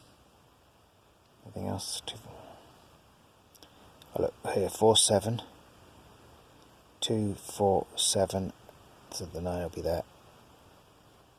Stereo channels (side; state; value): both; identical; correlation 1.00